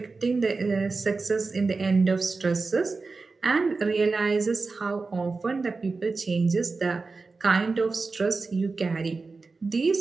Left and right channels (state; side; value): quieter; left; 4.0 dB